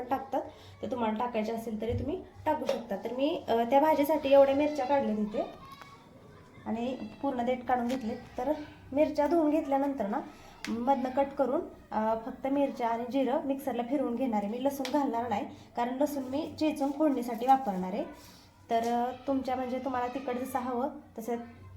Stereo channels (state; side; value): identical; both; correlation 1.00